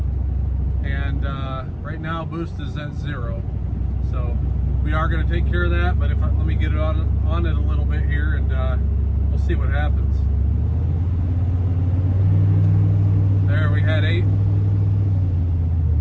and right now boost is at 0. So we are going to take care of that. But let me get it on it a little bit here, and we'll see what happens. There we had 8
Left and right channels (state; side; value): identical; both; correlation 1.00